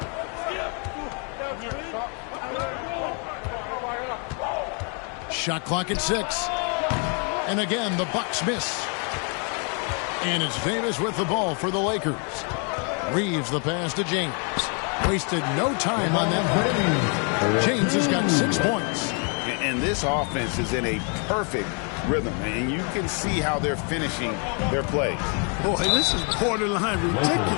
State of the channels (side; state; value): right; quieter; 38.3 dB